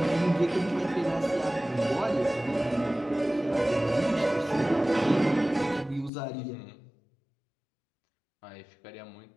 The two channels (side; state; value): right; drops out; at 6.1 s